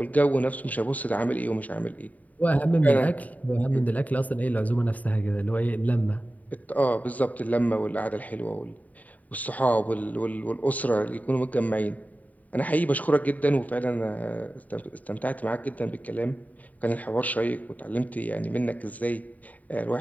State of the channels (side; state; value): right; late; 0.074 ms